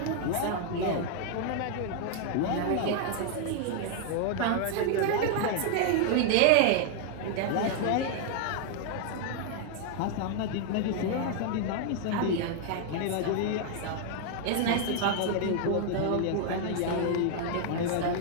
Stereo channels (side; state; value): both; different; correlation -0.01